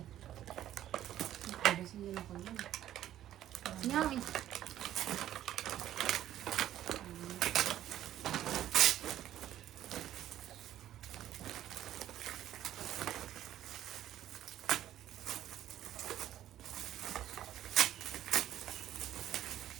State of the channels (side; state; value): left; quieter; 12.2 dB